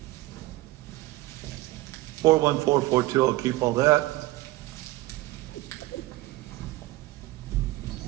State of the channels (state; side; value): quieter; left; 18.5 dB